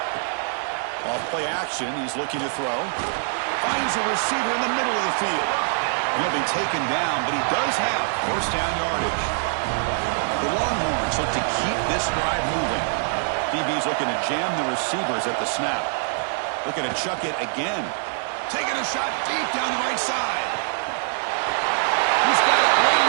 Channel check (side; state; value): left; silent; 61 dB below the other